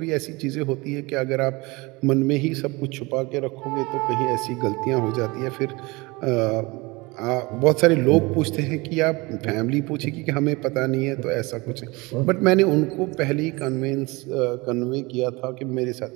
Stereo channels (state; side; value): quieter; left; 24.4 dB